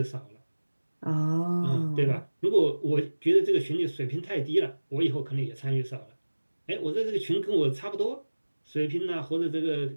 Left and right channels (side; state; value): both; inverted; correlation -1.00